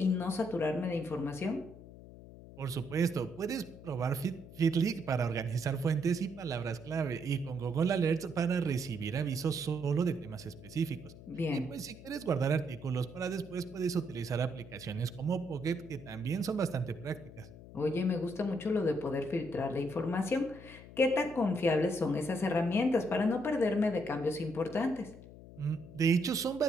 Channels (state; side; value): noise; left; hum, 17 dB below the sound